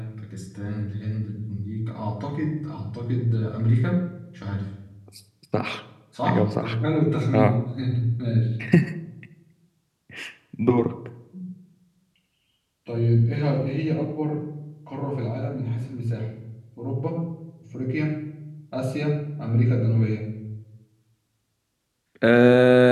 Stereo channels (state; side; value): identical; both; correlation 1.00